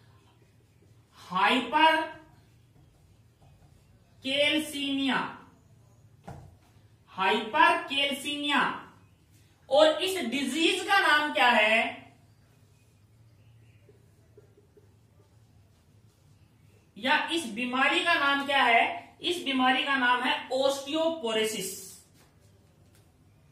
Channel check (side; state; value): both; identical; correlation 1.00